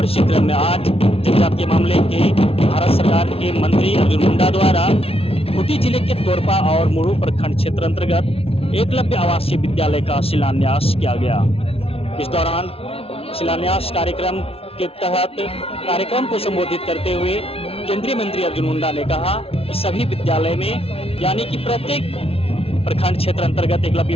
इसी क्रम में आज जनजातीय मामले के भारत सरकार के मंत्री अर्जुन मुंडा द्वारा खूंटी जिले के तोरपा और मुरू प्रखंड क्षेत्र अंतर्गत एकलव्य आवासीय विद्यालय का शिलान्यास किया गया। इस दौरान शिलान्यास कार्यक्रम के तहत कार्यक्रम को संबोधित करते हुए केंद्रीय मंत्री अर्जुन मुंडा ने कहा कि सभी विद्यालय में यानी कि प्रत्येक प्रखंड क्षेत्र अंतर्गत एकलव्य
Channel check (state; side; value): late; right; 0.28 ms